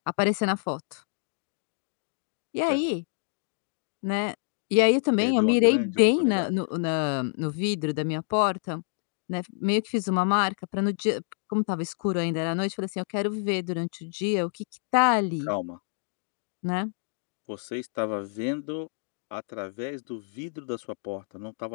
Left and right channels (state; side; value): silent; right; digital silence